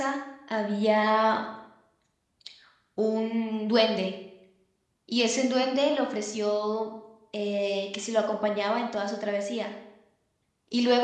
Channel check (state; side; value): identical; both; correlation 1.00